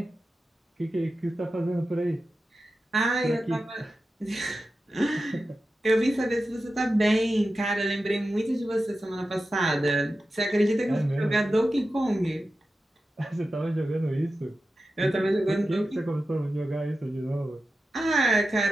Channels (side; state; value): both; normal; correlation 0.92